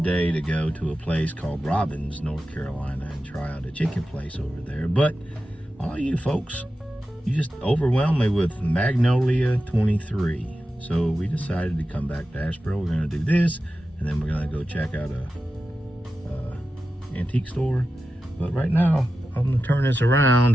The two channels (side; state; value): both; normal; correlation 0.92